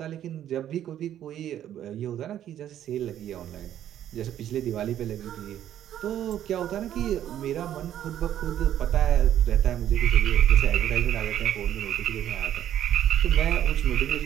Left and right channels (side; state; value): left; quieter; 11.1 dB